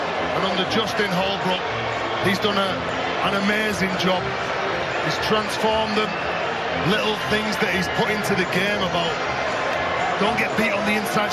And under Justin Holbrook, he's done an amazing job. He's transformed them. Little things that he's put into the game about don't get beat on the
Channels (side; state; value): both; identical; correlation 1.00